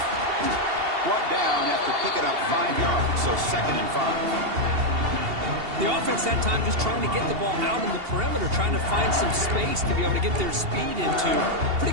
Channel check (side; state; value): left; late; 2.8 ms